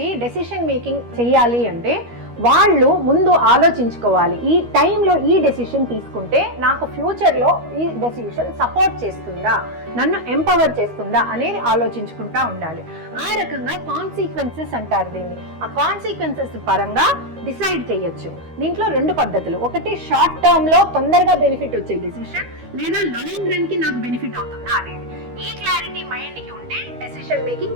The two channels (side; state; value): left; late; 13 ms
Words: డెసిషన్ మేకింగ్ చేయాలి అంటే వాళ్ళు ముందు ఆలోచించుకోవాలి, ఈ టైంలో ఈ డెసిషన్ తీసుకుంటే నాకు ఫ్యూచర్లో ఈ డెసిషన్ సపోర్ట్ చేస్తుందా, నన్ను ఎంపవర్ చేస్తుందా అనేది ఆలోచించుకుంటా ఉండాలి. ఆ రకంగా కాన్సిక్వెన్సెస్ అంటారు దీన్ని. ఆ కాన్సిక్వెన్సెస్ పరంగా డిసైడ్ చేయొచ్చు. దీంట్లో 2 పద్ధతులు. ఒకటి షార్ట్ టర్మ్లో తొందరగా బెనిఫిట్ వచ్చే డెసిషన్, లేదా లాంగ్ రన్కి నాకు బెనిఫిట్ అవుతుందా అనేది. ఈ క్లారిటీ మైండ్కి ఉంటే డెసిషన్